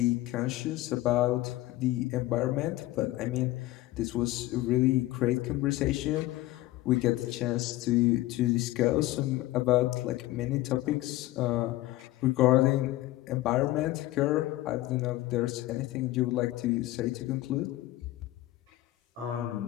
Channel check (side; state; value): right; quieter; 17.0 dB